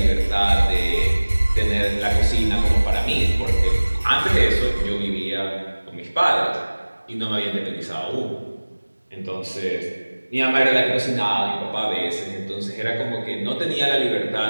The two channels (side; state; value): both; inverted; correlation -1.00